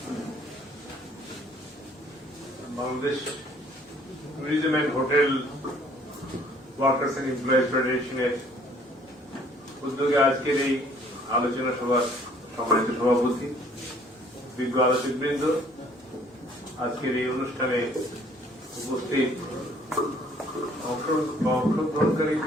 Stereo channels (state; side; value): normal; both; correlation 0.59